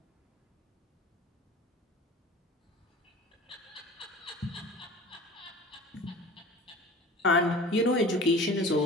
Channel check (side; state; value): both; normal; correlation 0.40